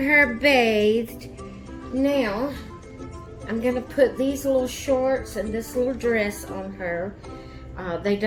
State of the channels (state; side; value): identical; both; correlation 1.00